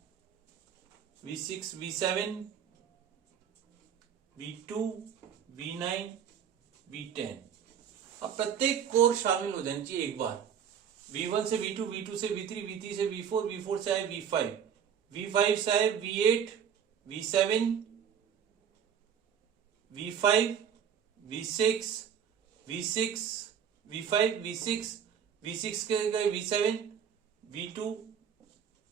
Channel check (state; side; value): quieter; left; 8.1 dB